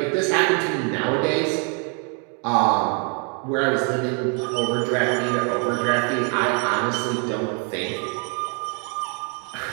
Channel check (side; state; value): left; quieter; 38.3 dB